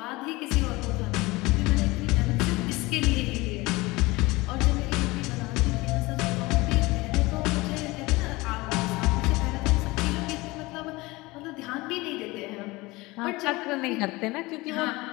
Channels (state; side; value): quieter; right; 21.9 dB